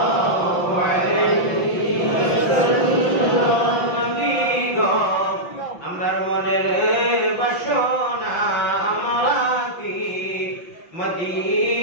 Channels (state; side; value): late; right; 5.8 ms